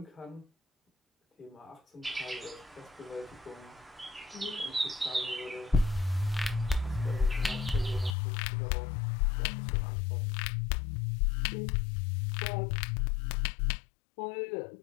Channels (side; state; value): right; drops out; at 8.2 s